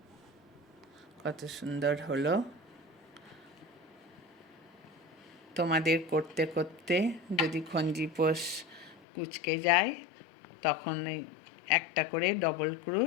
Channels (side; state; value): right; drops out; at 9.0 s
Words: কত সুন্দর হলো। তোমাদের করতে করতে যদি খঞ্জিপোষ কুঁচকে যায় তখন একটা করে ডবল